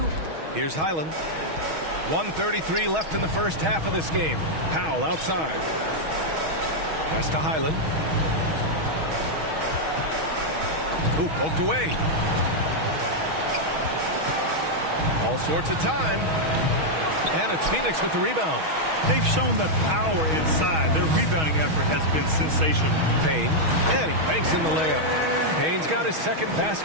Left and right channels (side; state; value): left; late; 6.3 ms